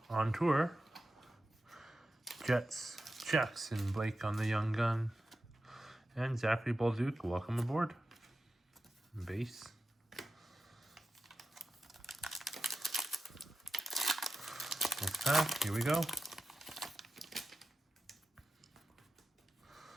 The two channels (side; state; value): both; normal; correlation 0.92